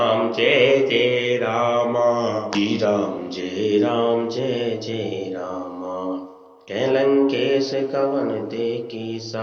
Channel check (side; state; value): both; identical; correlation 1.00